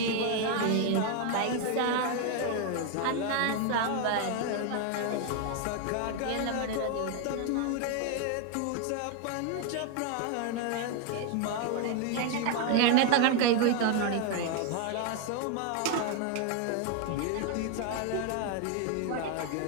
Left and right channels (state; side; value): different; both; correlation 0.01